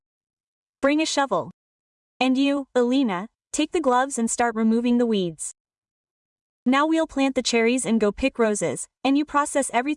Bring a shovel. And you, Alina, take the gloves and start removing the weeds. Now we'll plant the cherries and go pick roses, and you process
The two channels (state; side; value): identical; both; correlation 1.00